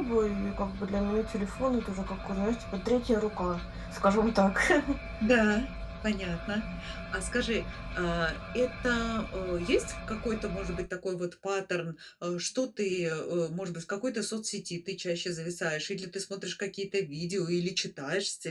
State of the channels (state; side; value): identical; both; correlation 1.00